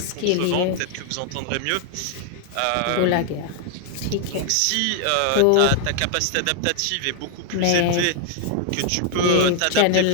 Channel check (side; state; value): both; different; correlation 0.00